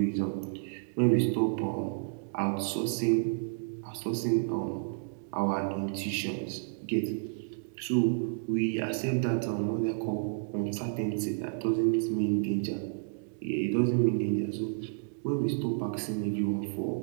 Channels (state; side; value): silent; left; digital silence